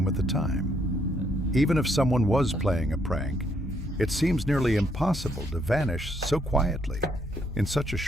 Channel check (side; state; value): both; normal; correlation 0.72